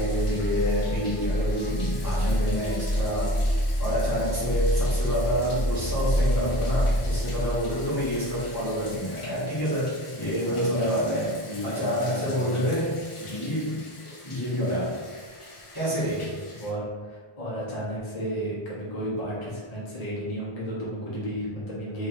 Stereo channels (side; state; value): right; late; 1.4 ms